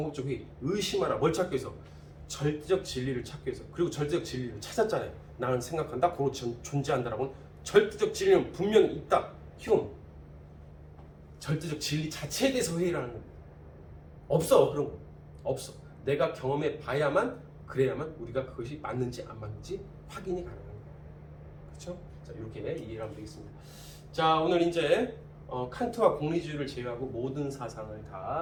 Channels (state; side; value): identical; both; correlation 1.00